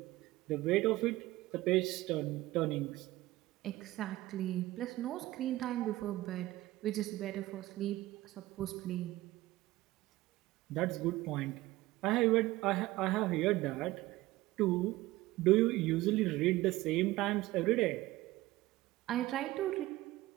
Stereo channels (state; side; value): quieter; left; 17.7 dB